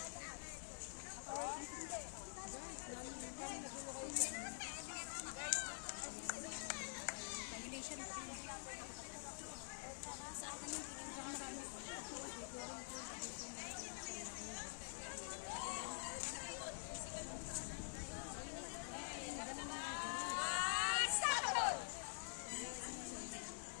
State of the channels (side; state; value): right; silent; digital silence